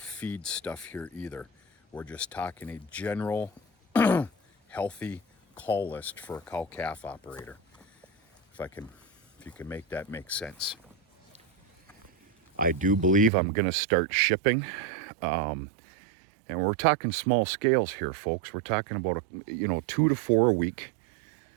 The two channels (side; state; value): left; drops out; at 13.3 s